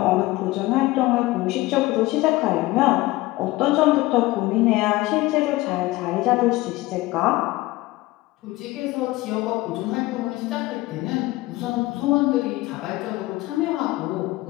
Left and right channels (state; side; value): quieter; right; 19.3 dB